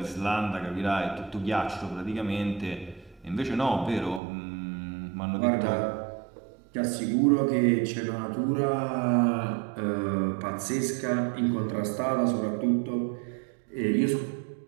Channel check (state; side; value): drops out; left; at 4.2 s